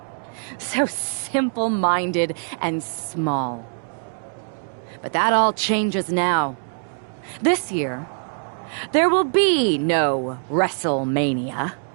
So simple-minded and small. But that all changes now. This year, there will be no WrestleMania.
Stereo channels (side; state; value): left; silent; digital silence